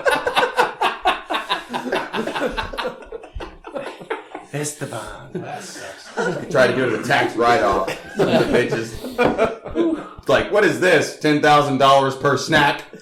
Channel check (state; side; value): identical; both; correlation 1.00